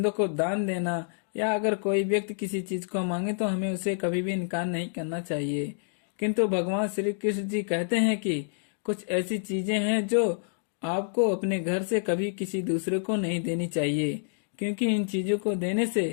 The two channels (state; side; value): silent; right; digital silence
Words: को दान देना या अगर कोई व्यक्ति किसी चीज को मांगे तो हमें उसे कभी भी इनकार नहीं करना चाहिए। किंतु भगवान श्री कृष्ण जी कहते हैं कि कुछ ऐसी चीजें हैं जो आपको अपने घर से कभी किसी दूसरे को नहीं देनी चाहिए, क्योंकि इन चीजों को देने